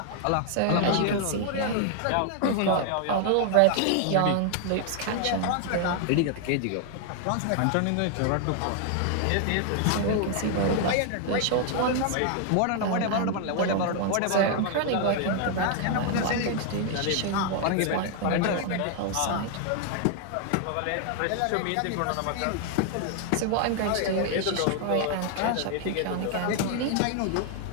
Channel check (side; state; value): both; different; correlation 0.00